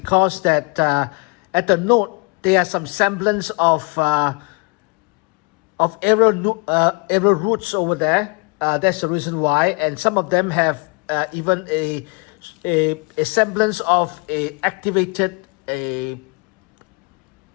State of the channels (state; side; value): quieter; right; 31.3 dB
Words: that at the node there are some semblance of aerial roots over there. That's the reason why, and some of them have even a semblance of a activated a